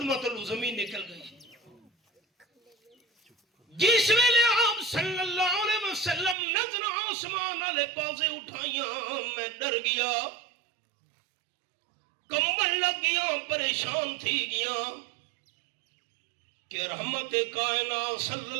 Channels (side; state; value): left; drops out; at 6.4 s